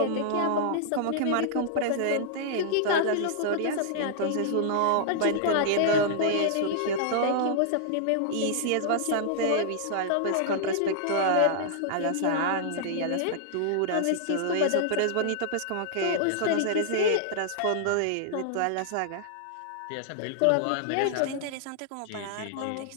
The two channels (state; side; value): different; both; correlation -0.01